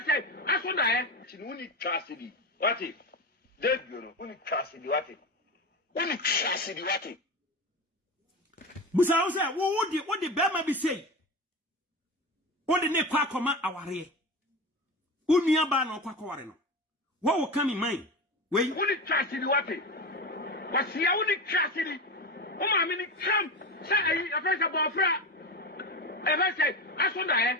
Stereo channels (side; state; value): both; normal; correlation 0.23